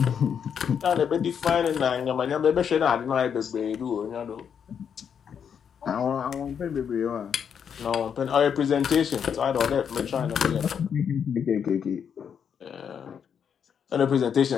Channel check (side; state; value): right; quieter; 7.6 dB